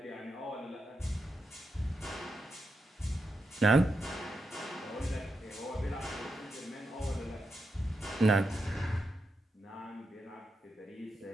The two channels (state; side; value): normal; both; correlation 0.86